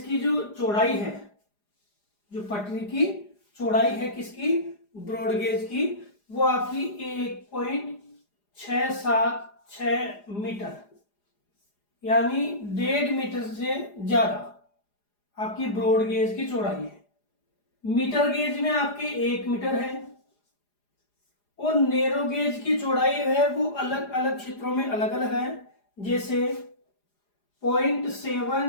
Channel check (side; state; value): right; late; 4.9 ms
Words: की जो चौड़ाई है, जो पटरी की चौड़ाई है किसकी? ब्रॉड गेज की, वो आपकी 1.676 मीटर यानी 1.5 मीटर से ज्यादा आपकी ब्रॉड गेज की चौड़ाई है। मीटर गेज में आपके 1 मीटर है। और नैरो गेज की चौड़ाई है वो अलग अलग क्षेत्रों में अलग अलग है, जैसे